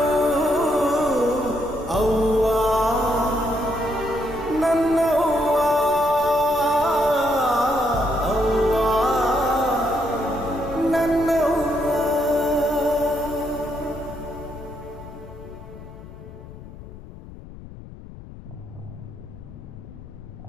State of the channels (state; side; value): noise; left; rumble, 16 dB below the sound